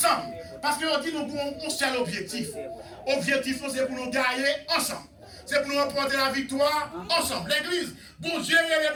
Parce que on dit nous avons un seul objectif. Objectif, c'est pour nous gagner ensemble. C'est pour nous remporter la victoire ensemble. L'église, bon Dieu, il est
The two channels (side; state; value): both; identical; correlation 1.00